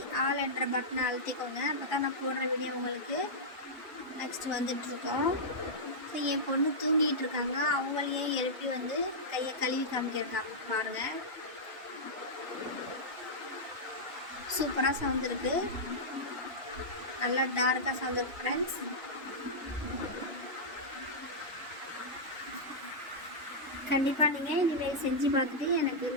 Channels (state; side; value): normal; both; correlation -0.10